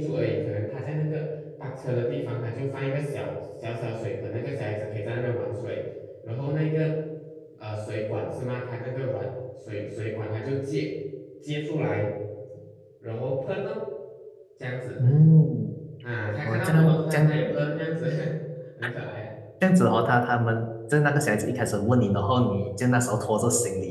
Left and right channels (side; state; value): both; identical; correlation 1.00